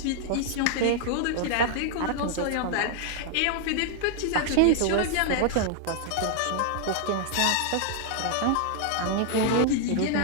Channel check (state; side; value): different; both; correlation 0.00